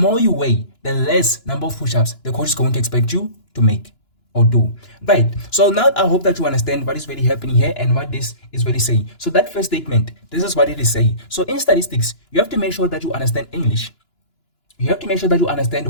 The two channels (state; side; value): late; right; 2.9 ms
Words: you weigh, the less number of push-ups the coach is going to expect you to make or do. Right, so now I hope that you understand what is really happening here and what this is really saying. So that first statement, this is what it is saying. So in statistics, you have to make sure that you understand English. You have to make sure that you